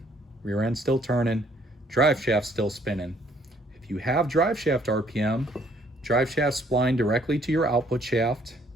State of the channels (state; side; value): normal; both; correlation 0.64